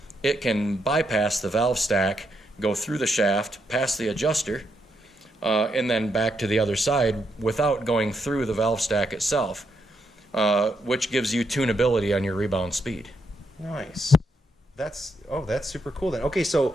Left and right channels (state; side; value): normal; both; correlation 0.80